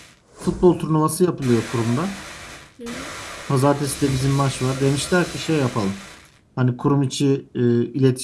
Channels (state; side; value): identical; both; correlation 1.00